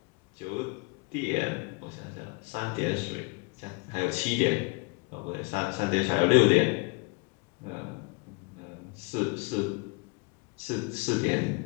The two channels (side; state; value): right; quieter; 29.1 dB